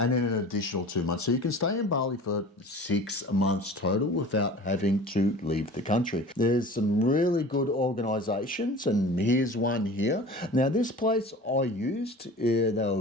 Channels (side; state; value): both; normal; correlation 0.40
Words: then an additional 2 months. So you can stay in Bali for 6 months total without having to leave the country. There's some really good organisations, and here's one here. Now this place I used, they